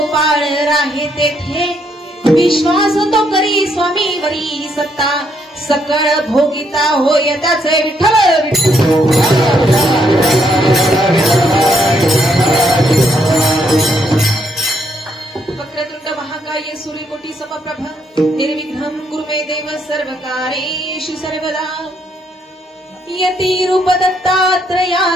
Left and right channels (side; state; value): both; normal; correlation 0.73